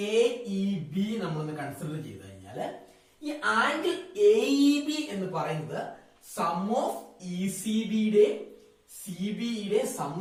AEB നമ്മളൊന്ന് കൺസിഡർ ചെയ്ത് കഴിഞ്ഞാൽ ഈ ആംഗിൾ AEB എന്ന് പറയുന്നത് സം ഓഫ് ECBയുടെ CBEയുടെ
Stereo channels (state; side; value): identical; both; correlation 1.00